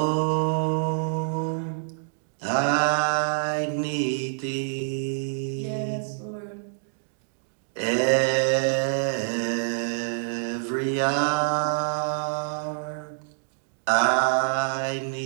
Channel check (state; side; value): silent; left; digital silence